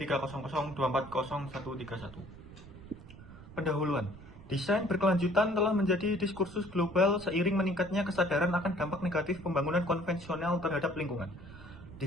Pendahuluan. Desain berkelanjutan telah menjadi diskursus global seiring meningkatnya kesadaran akan dampak negatif pembangunan konvensional terhadap lingkungan.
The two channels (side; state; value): right; noise; rumble, 18 dB below the sound